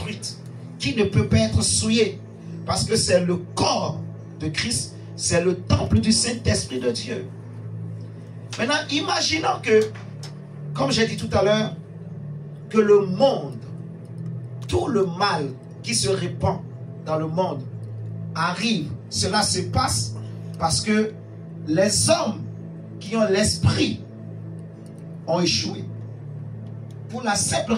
qui ne peut pas être souillée, parce que c'est le corps de Christ, c'est le temple du Saint-Esprit de Dieu. Maintenant, imaginons que, comme j'ai dit tout à l'heure, que le monde, tout le mal qui se répand dans le monde arrive. Cela se passe parce que les hommes qui ont l'esprit ont échoué. Pour la simple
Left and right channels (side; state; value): both; identical; correlation 1.00